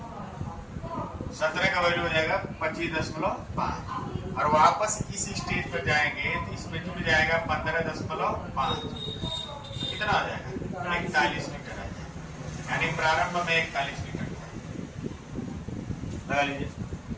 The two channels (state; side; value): identical; both; correlation 1.00